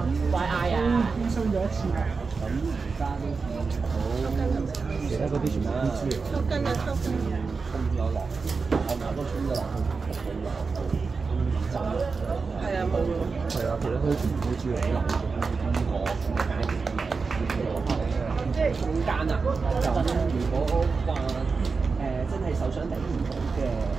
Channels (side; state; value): left; quieter; 4.6 dB